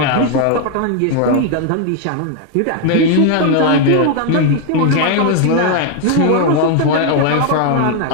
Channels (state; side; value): different; both; correlation 0.01